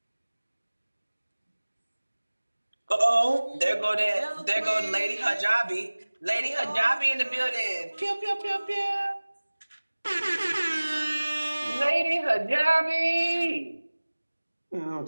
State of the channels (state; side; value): inverted; both; correlation -1.00